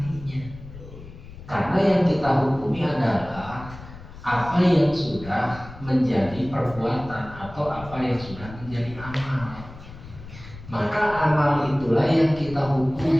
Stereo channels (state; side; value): noise; left; rumble, 16 dB below the sound